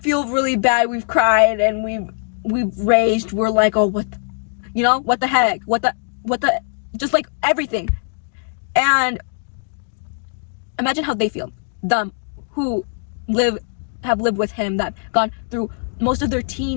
really bad. We've cried and we've raged. We're like, oh, what the heck? What the, just like everything. And imagine how they feel. Them who have lived with him, that gone through most of their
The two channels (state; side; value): silent; right; digital silence